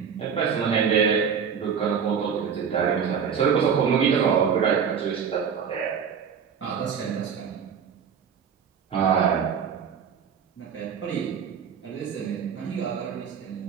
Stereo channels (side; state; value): left; quieter; 7.1 dB